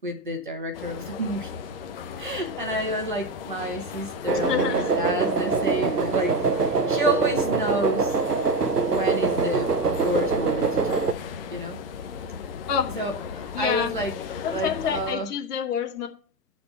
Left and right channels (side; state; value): both; normal; correlation 0.15